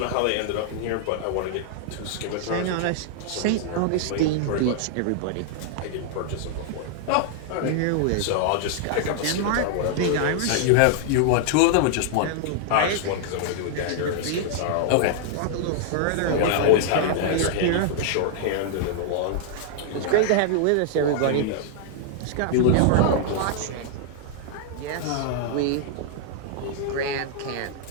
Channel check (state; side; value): different; both; correlation -0.01